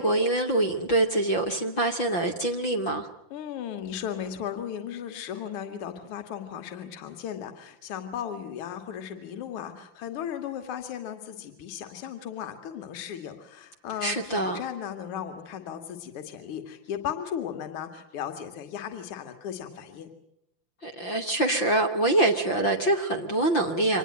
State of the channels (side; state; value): right; late; 5.8 ms